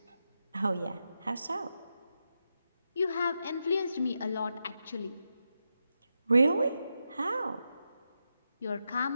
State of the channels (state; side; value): inverted; both; correlation -0.87